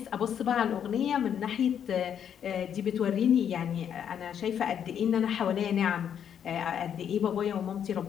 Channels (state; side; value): quieter; right; 8.7 dB